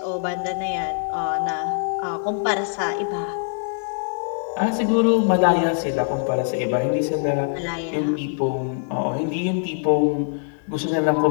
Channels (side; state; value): right; silent; 63 dB below the other